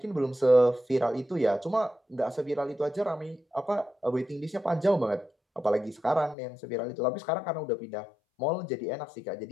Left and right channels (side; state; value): right; drops out; at 6.4 s